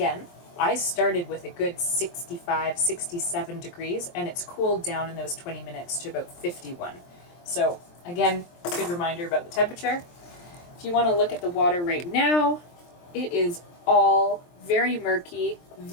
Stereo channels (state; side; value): late; right; 23 ms